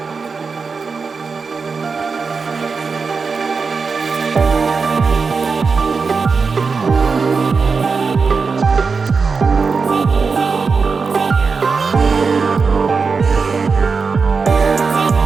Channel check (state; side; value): quieter; left; 4.9 dB